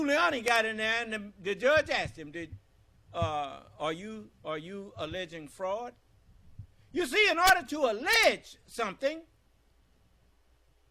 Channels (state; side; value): identical; both; correlation 1.00